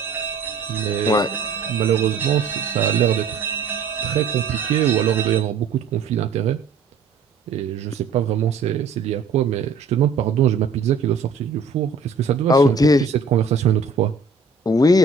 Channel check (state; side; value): quieter; left; 4.7 dB